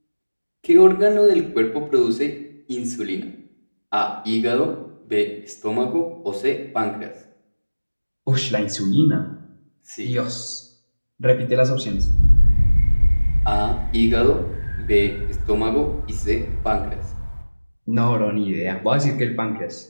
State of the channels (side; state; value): both; inverted; correlation -1.00